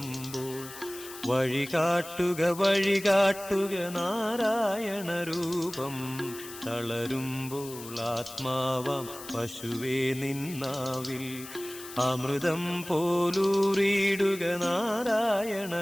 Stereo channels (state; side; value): noise; left; hiss, 14 dB below the sound